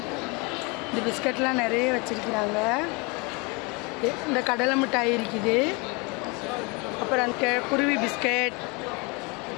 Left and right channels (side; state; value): right; quieter; 29.2 dB